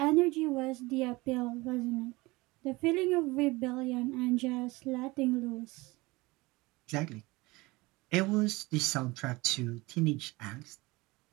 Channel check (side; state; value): left; quieter; 22.3 dB